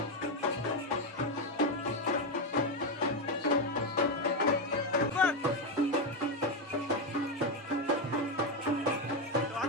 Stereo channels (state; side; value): normal; both; correlation 0.08